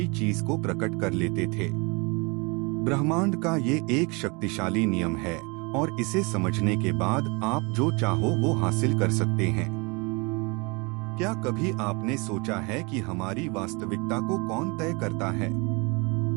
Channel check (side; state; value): left; quieter; 29.3 dB